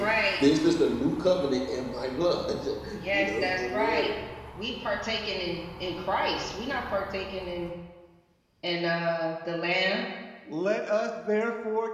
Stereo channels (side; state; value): both; identical; correlation 1.00